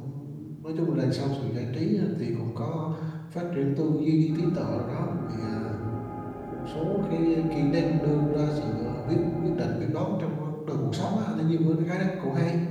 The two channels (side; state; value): both; identical; correlation 1.00